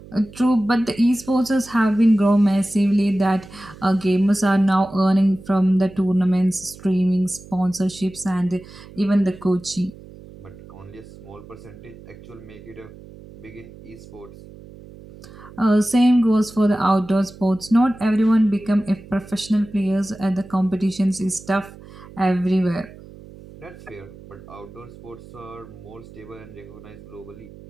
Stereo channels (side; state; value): right; noise; hum, 19 dB below the sound